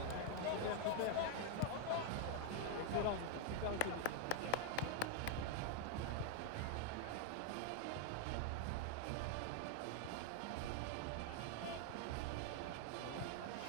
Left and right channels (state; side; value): different; both; correlation 0.00